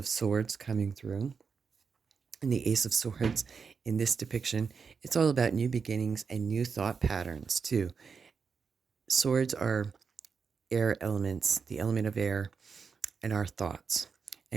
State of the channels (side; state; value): left; quieter; 5.6 dB